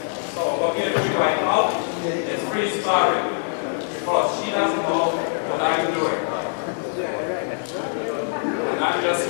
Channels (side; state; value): right; silent; digital silence